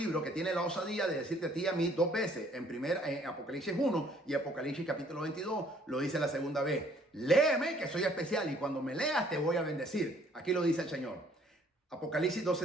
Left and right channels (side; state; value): both; normal; correlation 0.61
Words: que tiene la osadía de decirte a ti y a mí 2 veces, en Apocalipsis 1 y Apocalipsis capítulo 22, lo dice la segunda vez. Léeme que soy especial y cuando me leas te voy a bendecir. Aquí lo dice el Señor. Apocalipsis